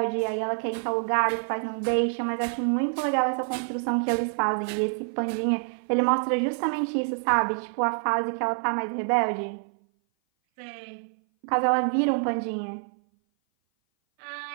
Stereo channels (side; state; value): left; silent; 57 dB below the other